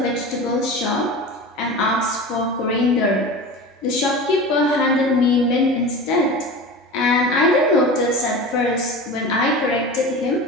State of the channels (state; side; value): normal; both; correlation 0.32